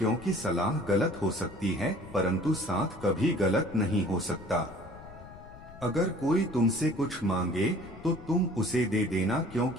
सलाह गलत हो सकती है परंतु साथ कभी गलत नहीं हो सकता। अगर कोई तुमसे कुछ मांगे तो तुम उसे दे देना,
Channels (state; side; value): noise; left; rumble, 18 dB below the sound